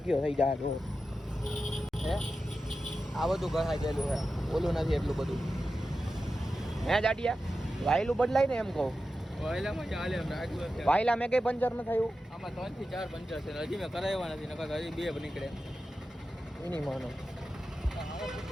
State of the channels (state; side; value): normal; both; correlation 0.92